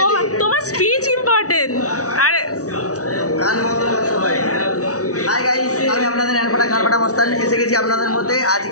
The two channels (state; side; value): late; right; 0.67 ms